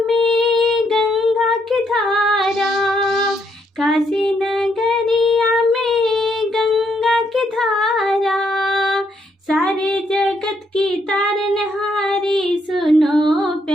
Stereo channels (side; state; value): both; normal; correlation 0.74